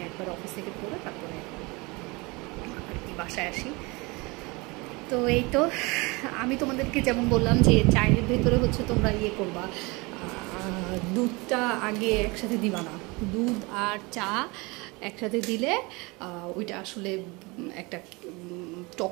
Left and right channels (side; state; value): left; quieter; 25.8 dB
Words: একবার অফিস থেকে পড়ে তারপরে আর কি বাসায় আসি। তো এই তো আমি তোমাদেরকে যেমন বললাম যে চায়ের ভেতরে হচ্ছে তোমরা ইয়ে করবা, দুধটা আগে একসাথে দিবা না, দুধ আর চা একসাথে দিলে ওইটা আসলে একটা